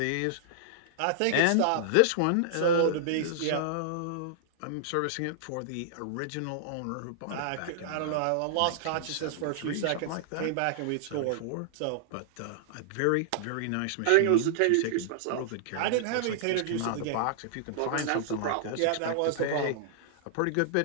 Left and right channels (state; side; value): different; both; correlation -0.01